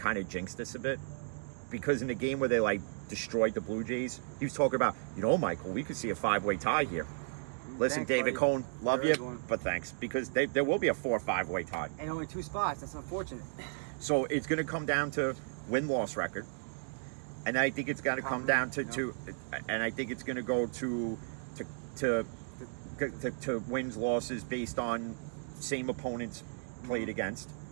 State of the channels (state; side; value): silent; left; digital silence